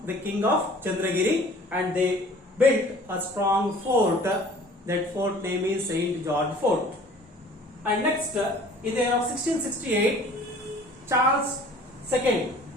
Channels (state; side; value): normal; both; correlation 0.49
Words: the king of Chandragiri, and they built a strong fort. That fort name is Saint George Fort. And next, in the year of 1668, Charles II,